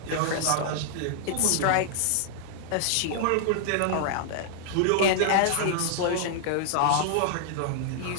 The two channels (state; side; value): different; both; correlation 0.00